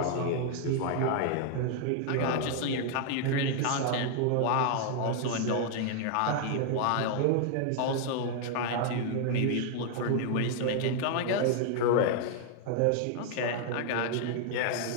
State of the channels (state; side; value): different; both; correlation 0.00